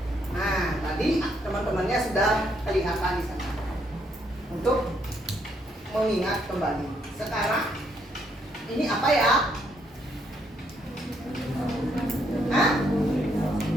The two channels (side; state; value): both; normal; correlation 0.73